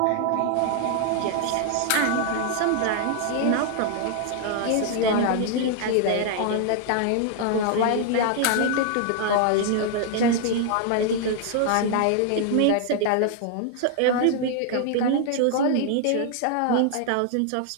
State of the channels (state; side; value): different; both; correlation 0.00